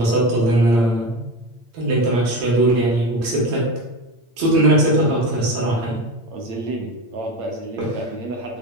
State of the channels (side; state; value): left; late; 8.7 ms